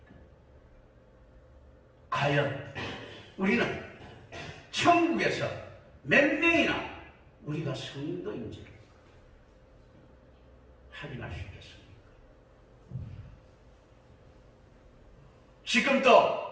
과연 우리는 천국에서 몇 명이나 우리가 성도인지를 확인할 수 있겠습니까? 지금도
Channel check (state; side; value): identical; both; correlation 1.00